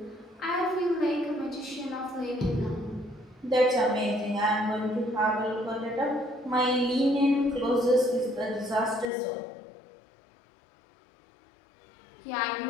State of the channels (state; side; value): drops out; right; at 9.1 s